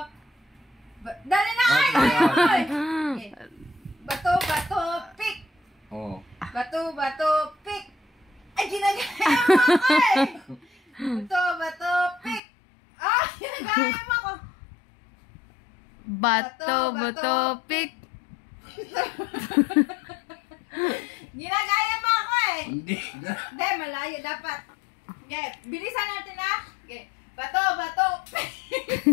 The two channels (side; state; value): right; drops out; at 12.4 s